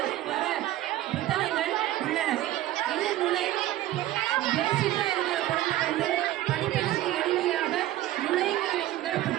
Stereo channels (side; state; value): left; quieter; 14.7 dB